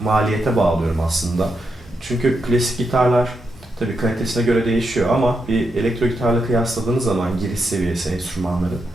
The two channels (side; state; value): both; normal; correlation 0.84